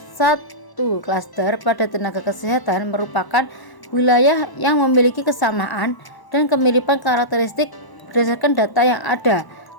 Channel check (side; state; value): right; late; 1.0 ms